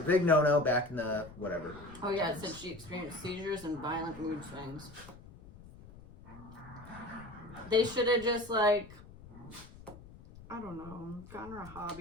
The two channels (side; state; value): left; noise; rumble, 18 dB below the sound